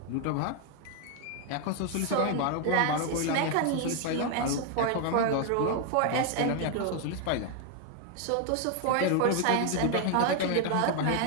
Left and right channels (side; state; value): both; different; correlation 0.01